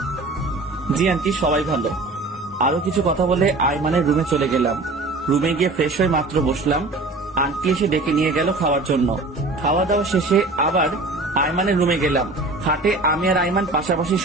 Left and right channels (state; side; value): quieter; left; 3.2 dB